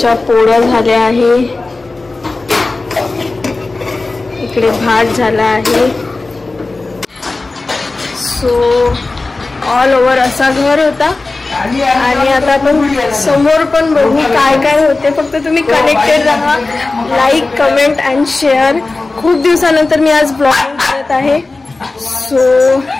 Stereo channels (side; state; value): right; quieter; 3.4 dB